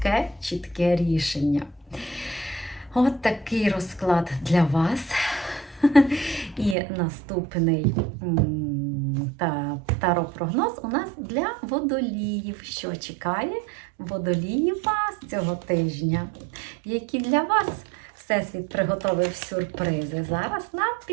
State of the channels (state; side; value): drops out; left; at 6.8 s